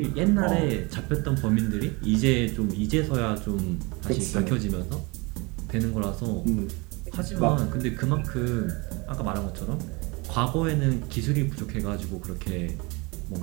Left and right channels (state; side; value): quieter; left; 26.9 dB